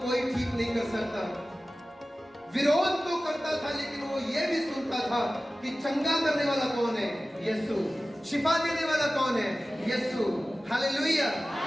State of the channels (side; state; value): both; normal; correlation 0.96